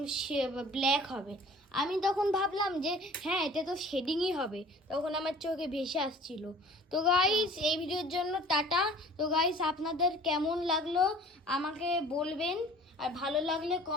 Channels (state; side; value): normal; both; correlation 0.48